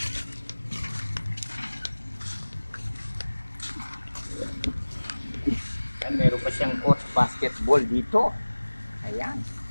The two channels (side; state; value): both; inverted; correlation -1.00